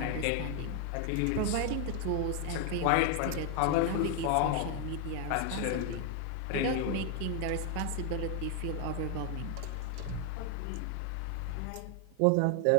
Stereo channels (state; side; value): different; both; correlation 0.00